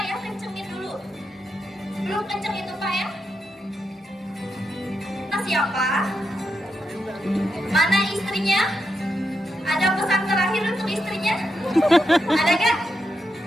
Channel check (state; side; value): normal; both; correlation 0.85